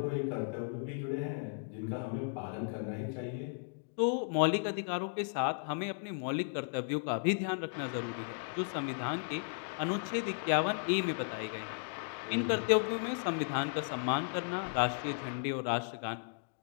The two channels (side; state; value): right; silent; digital silence